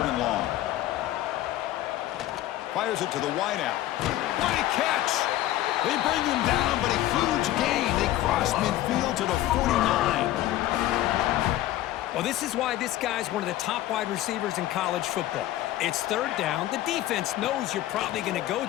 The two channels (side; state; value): right; quieter; 14.5 dB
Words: and long. Fires it to the wideout. What a catch! They bring him down, but a huge gain. They cross midfield to the 49. Well, this is why this guy's one of the top wide receivers in college football. It's 3rd down. The defense knows you're probably going to go